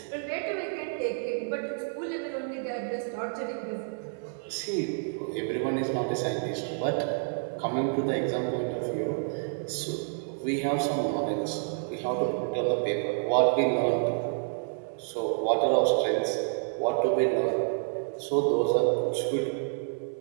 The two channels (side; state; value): left; silent; digital silence